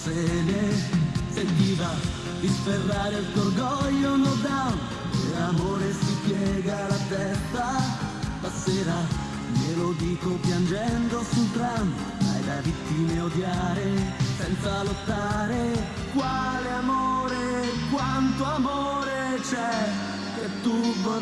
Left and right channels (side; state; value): both; identical; correlation 1.00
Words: Sentiva di sferrare il tuo orgoglio no down, e l'amore si piega la testa. Stasera glielo dico piangendo sul tram, hai da vittime odiare senza lottare. Quale amore, quanto amore c'è che tu